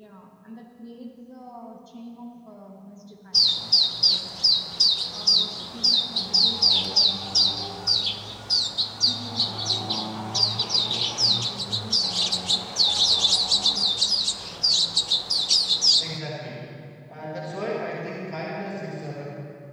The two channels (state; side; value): identical; both; correlation 1.00